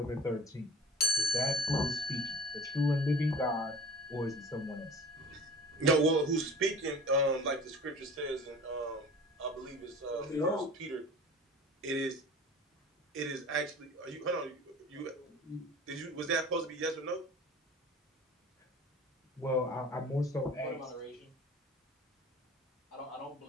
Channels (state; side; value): normal; both; correlation 0.40